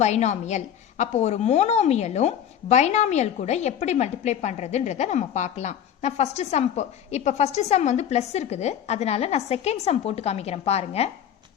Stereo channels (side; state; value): right; quieter; 9.4 dB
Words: பைனாமியல். அப்போ ஒரு மோனோமியலும் பைனாமியல் கூட எப்படி மல்டிப்ளை பண்றதுன்றத நம்ம பார்க்கலாம். நான் ஃபர்ஸ்ட் சம் இப்ப ஃபர்ஸ்ட் சம் வந்து பிளஸ் இருக்குது, அதனால நான் செகண்ட் சம் போட்டு காமிக்கிறேன் பாருங்க.